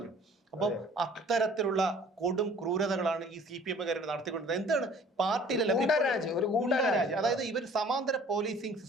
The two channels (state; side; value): normal; both; correlation 0.52